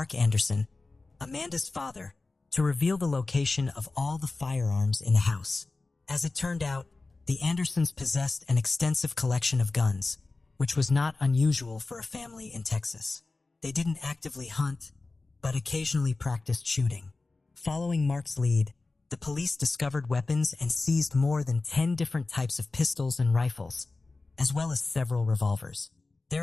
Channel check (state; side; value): quieter; right; 3.5 dB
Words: Anderson, Amanda's father, to reveal the location of all the firearms in the house. As it turned out, the Andersons possessed an extensive collection of guns, which was not unusual for a family in Texas. They didn't actively hunt, but occasionally practiced shooting. Following Mark's lead, the police discovered weapons and seized more than 10 different types of pistols and rifles, as well as several revolvers.